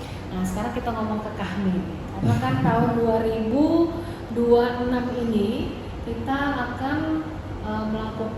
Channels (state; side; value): identical; both; correlation 1.00